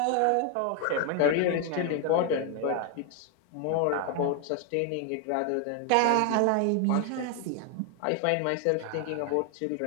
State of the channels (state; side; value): different; both; correlation 0.00